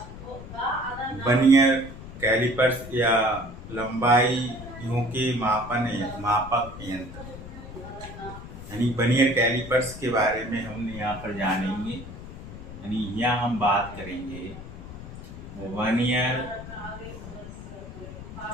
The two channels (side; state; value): left; noise; rumble, 13 dB below the sound